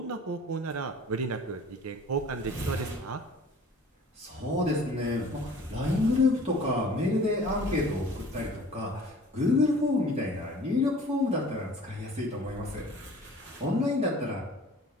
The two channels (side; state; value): both; normal; correlation 0.47